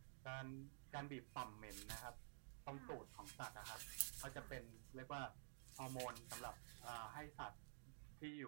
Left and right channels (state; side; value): silent; left; digital silence